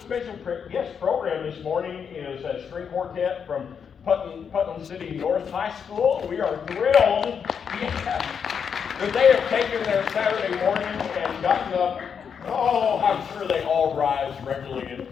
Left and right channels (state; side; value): quieter; right; 7.0 dB